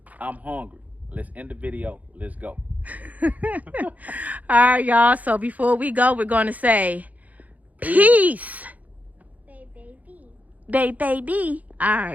I'm hungry. Let's end the video. Let's go. All right, y'all. So before we go, we're going to say peace. Baby. Baby. All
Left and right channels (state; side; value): late; left; 0.076 ms